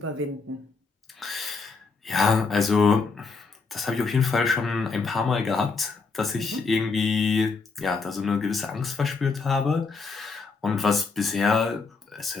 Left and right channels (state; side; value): quieter; right; 4.5 dB